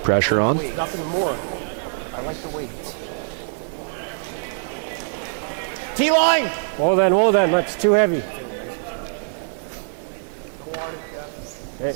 on. Nothing more. I like the weight. T-line! Hold on, that's too heavy.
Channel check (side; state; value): left; silent; digital silence